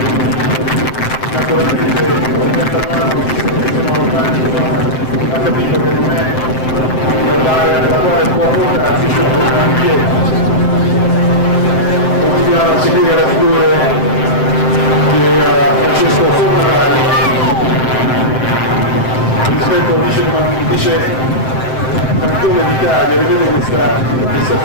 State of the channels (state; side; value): late; right; 7.7 ms